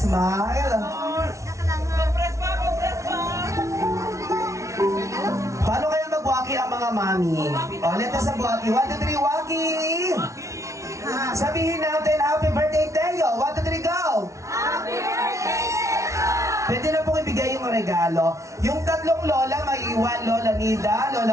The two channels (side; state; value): left; late; 0.14 ms